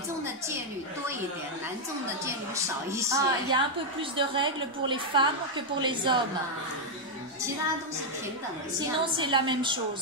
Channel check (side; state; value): both; normal; correlation 0.00